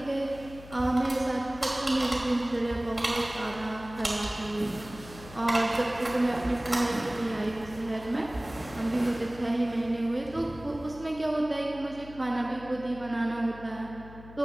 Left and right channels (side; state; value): left; noise; hum, 17 dB below the sound